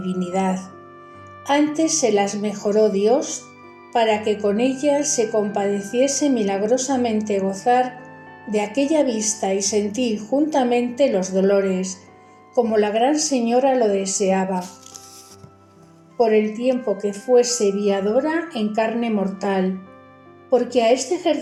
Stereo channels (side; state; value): both; identical; correlation 1.00